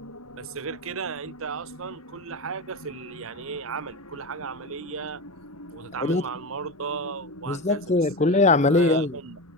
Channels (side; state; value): both; normal; correlation 0.19